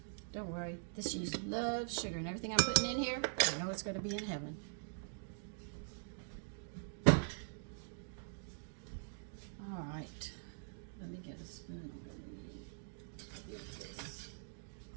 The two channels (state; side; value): silent; left; digital silence